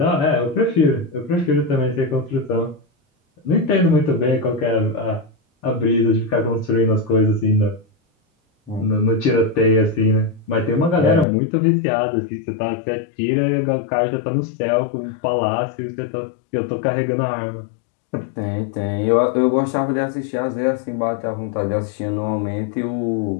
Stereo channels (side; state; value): right; drops out; at 11.2 s